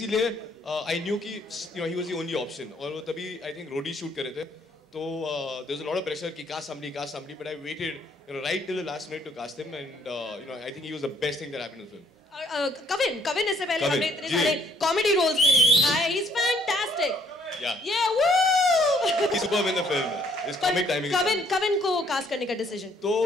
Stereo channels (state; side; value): normal; both; correlation 0.65